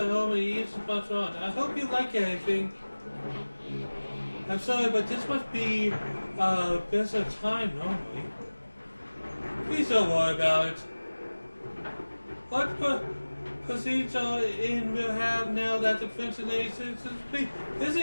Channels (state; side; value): inverted; both; correlation -1.00